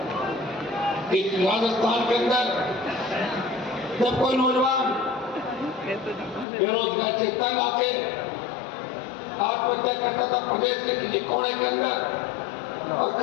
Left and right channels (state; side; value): drops out; right; at 6.5 s